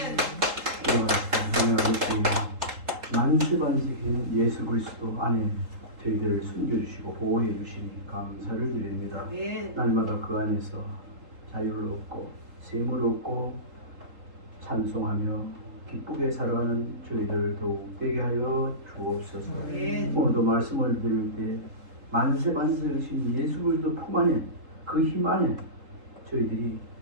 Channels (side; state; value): left; late; 3.8 ms